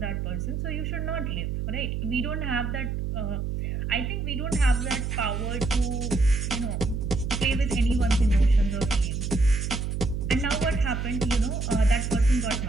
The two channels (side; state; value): right; noise; hum, 2 dB below the sound